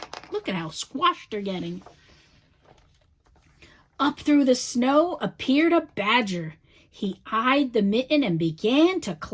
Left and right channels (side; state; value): both; identical; correlation 1.00